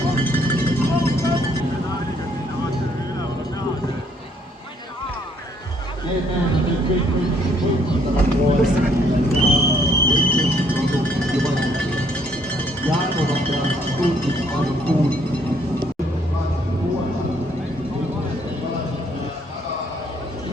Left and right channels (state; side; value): normal; both; correlation 0.66